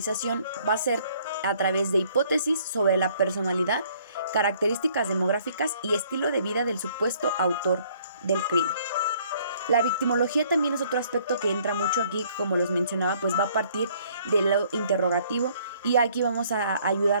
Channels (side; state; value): both; inverted; correlation -0.61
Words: va a ser a través de hipótesis sobre la personalidad, características demográficas y estilo de vida del supuesto autor del crimen. La victimología también es otro aspecto que entra mucho aquí, como les mencionaba, pues va a partir de lo interrogativo y aquí vamos a